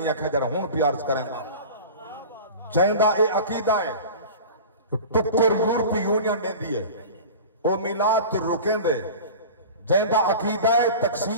کھجر ہون پیارز کریں دا. جیندہ اے عقیدہ ہے ٹکر یورپی یونین دے دیئے او میلاد تو رکیں دے. جیندہ عقیدہ ہے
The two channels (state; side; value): inverted; both; correlation -0.35